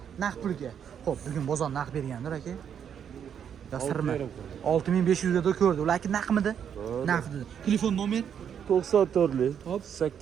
Naqd pulga. Xo'p, bugun bozor naqd bergandir aka. Yo sirmi? 6,500 ga ko'rdi. Ularki naqdmidi? Naqd. Telefon nomer 94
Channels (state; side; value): quieter; left; 8.3 dB